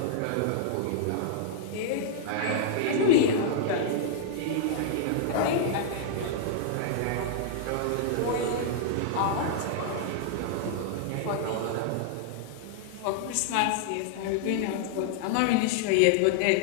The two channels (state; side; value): different; both; correlation -0.01